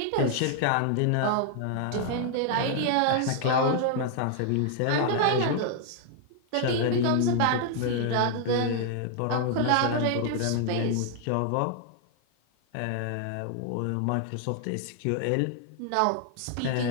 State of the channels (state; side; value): different; both; correlation 0.00